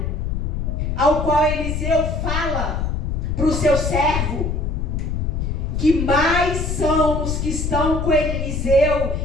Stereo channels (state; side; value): noise; left; rumble, 1 dB below the sound